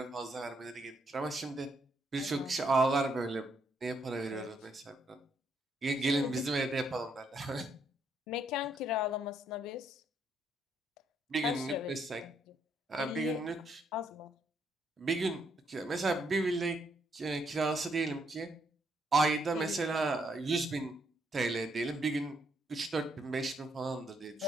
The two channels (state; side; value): normal; both; correlation 0.74